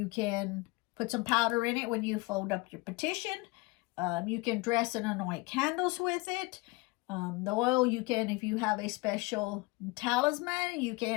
can put some powder in it when you fold up your petition. You can dress and anoint candles with it. The oil, you can, if you have a special talisman, you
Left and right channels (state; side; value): quieter; right; 24.5 dB